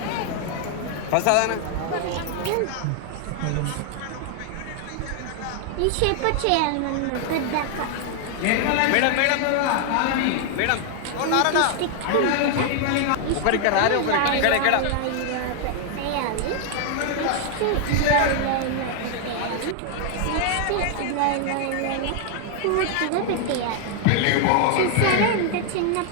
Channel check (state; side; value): different; both; correlation 0.00